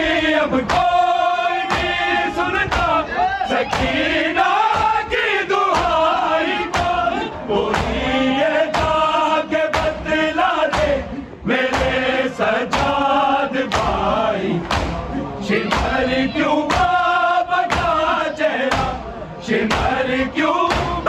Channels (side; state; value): both; identical; correlation 1.00